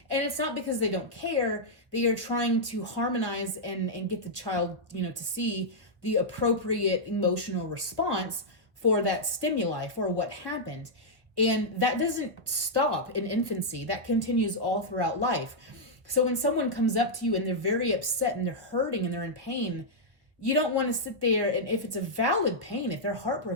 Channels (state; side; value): late; left; 1.4 ms